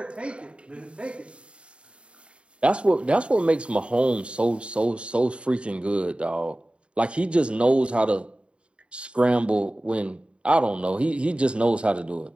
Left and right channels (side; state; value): left; late; 0.057 ms